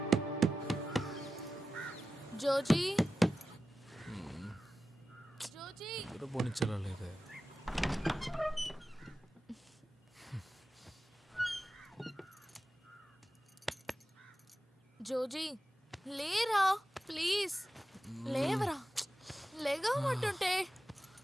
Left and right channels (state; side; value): normal; both; correlation 0.93